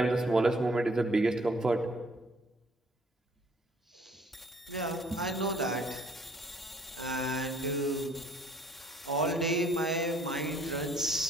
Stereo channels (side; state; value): both; normal; correlation 0.60